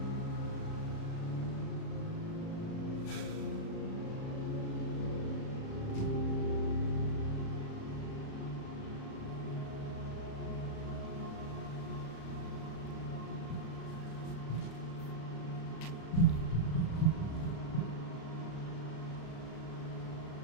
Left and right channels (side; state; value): right; late; 36 ms